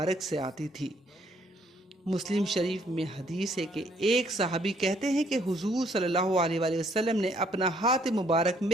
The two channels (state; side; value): normal; both; correlation 0.66